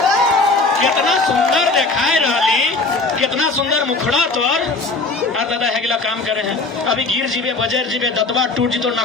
कितना सुंदर देखाए रही, कितना सुंदर मुखड़ा तोर दादा हेगला काम करे हैं, अभी गिर जीवे बजर जीवे दतवा टूट जी तो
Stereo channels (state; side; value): quieter; right; 3.5 dB